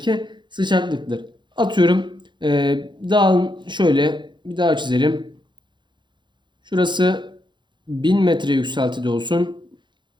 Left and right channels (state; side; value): late; left; 0.22 ms